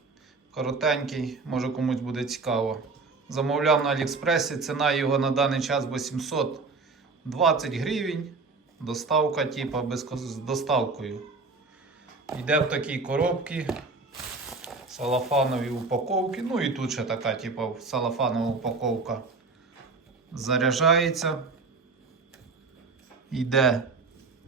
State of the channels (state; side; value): quieter; left; 4.1 dB